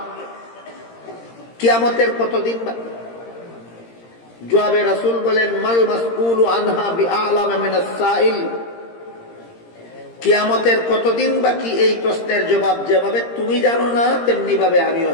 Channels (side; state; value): right; late; 17 ms